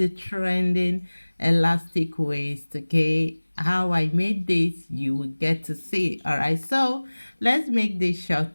trending elastic waist, okay? How I made this, you will get to see, all right? So let's make this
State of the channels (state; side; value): inverted; both; correlation -1.00